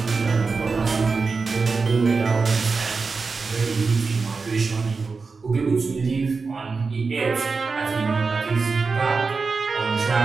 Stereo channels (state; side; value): quieter; left; 4.5 dB